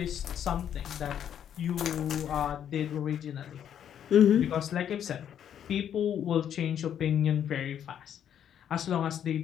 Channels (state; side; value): quieter; right; 9.4 dB